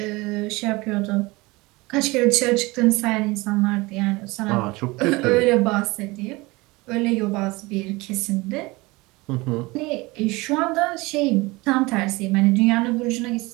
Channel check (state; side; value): quieter; left; 22.9 dB